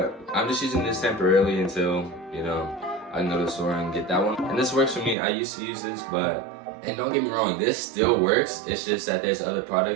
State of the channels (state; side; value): drops out; left; at 5.2 s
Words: I'm just using this temporarily until, you know, I can go to the store and get that one. And this works for me. I used to use this, but, and don't get me wrong, this still works. It's just that there's other